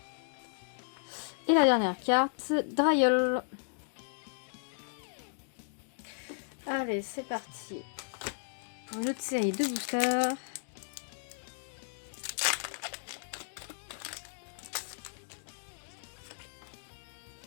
Et la dernière carte, Dryol. Allez, c'est parti. Une autre série de boosters.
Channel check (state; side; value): silent; right; digital silence